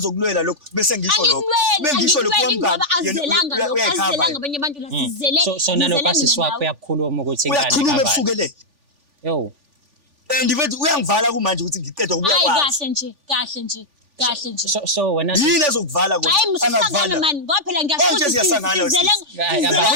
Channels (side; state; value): left; late; 3.4 ms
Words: lokho bese ngisho lokho. Bengisho lokho ngoba azelanga abanye abantu la sizele. So nalokho asiswapho uyakhuluma ukuthi ingane kabani. Uyakhuluma ebusukelele. Yo. Ndibethi uyangivala kumanje ukuthi ngiqeda ukubuya kwazi. Kahle nje. So wena yini ezokuvala kodwa angavala mani ngoba phela ngiyasho siyasangana ngeke